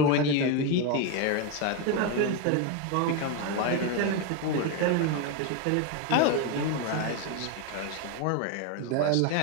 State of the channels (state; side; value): different; both; correlation 0.02